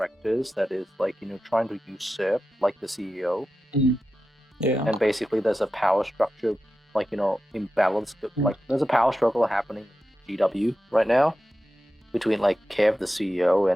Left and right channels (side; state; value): both; normal; correlation 0.92